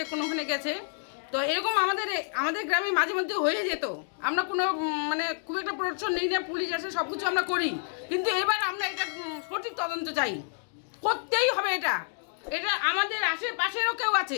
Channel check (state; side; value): silent; right; digital silence